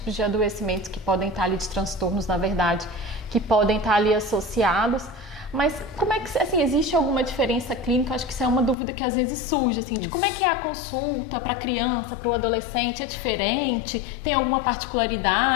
de adoecimentos que podem estar ali, de transtornos, na verdade, que podem estar ali associados. Mas como é que, assim, existe alguma diferença clínica? Eu acho que isso é uma dúvida que às vezes surge, assim, de como é que é a consulta para a criança, para o adolescente, é diferente? Tem alguma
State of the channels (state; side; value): drops out; right; at 8.8 s